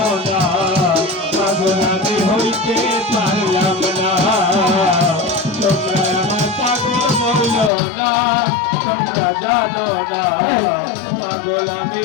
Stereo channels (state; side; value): drops out; right; at 7.7 s